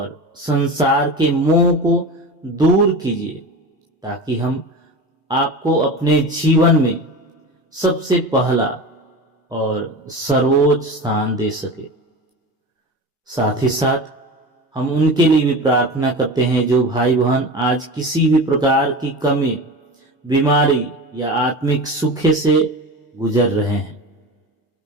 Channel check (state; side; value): normal; both; correlation 0.29